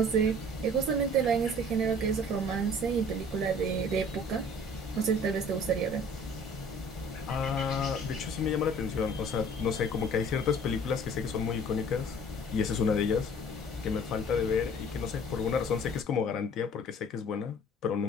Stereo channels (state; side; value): normal; both; correlation 0.50